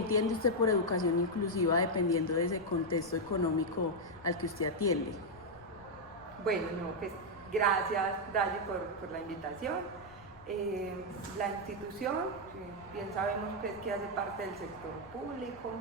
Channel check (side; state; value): left; noise; rumble, 22 dB below the sound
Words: usted por educación inclusiva dependiendo de ese contexto económico al que usted atiende? Bueno, no, pues gracias, Dalle, por la invitación. La institución, bien sabemos pues, que hace parte del sector público.